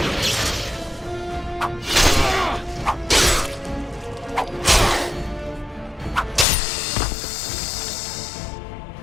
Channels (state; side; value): drops out; right; at 6.5 s